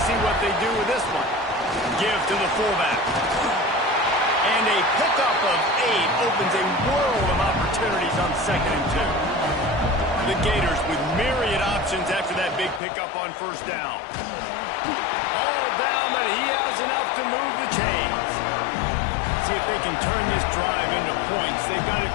see what they do with this one. Give to the fullback. And a pickup of 8 opens a world of opportunities on 2nd and 2. The Gators with myriad options after that big pickup on first down. All down, but he has enough to move the chains. See if they can turn this drive into points. They've got it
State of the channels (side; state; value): right; drops out; at 12.8 s